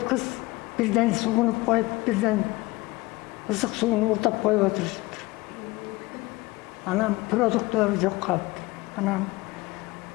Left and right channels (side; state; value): right; quieter; 21.2 dB